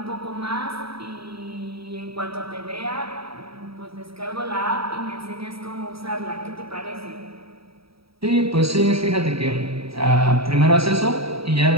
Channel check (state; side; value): late; left; 0.76 ms